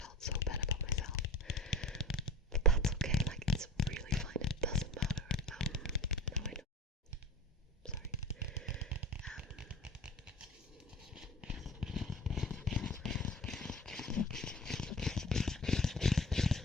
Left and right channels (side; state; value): both; normal; correlation 0.37